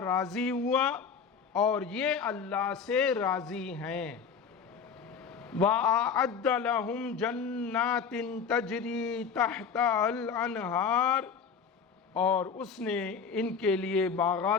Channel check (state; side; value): quieter; right; 6.2 dB